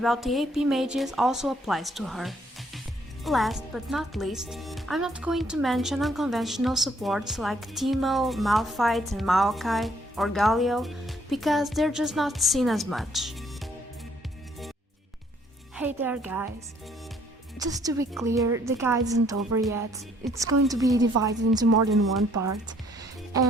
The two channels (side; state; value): both; normal; correlation 0.65